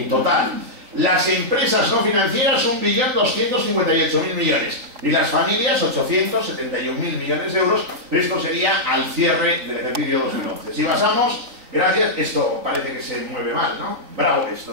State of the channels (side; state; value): left; late; 3.9 ms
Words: total. Las empresas no financieras, 1.258.000 millones. Y las familias, 871.000 millones de euros. Esto sería al cierre del ejercicio 2011. Si pasamos, gracias, esto parece que se mueve mal, ¿no? Bravo, esto